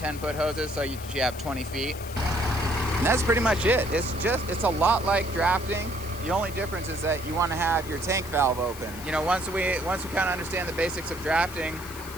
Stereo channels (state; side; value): noise; left; hiss, 15 dB below the sound